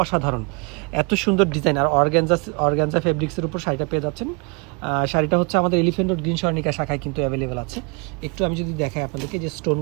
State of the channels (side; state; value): left; quieter; 32.7 dB